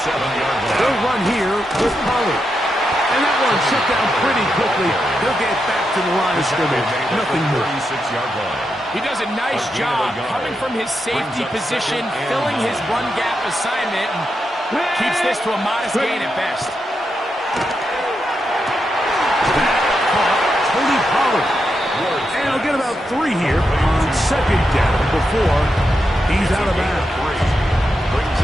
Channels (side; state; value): both; normal; correlation 0.85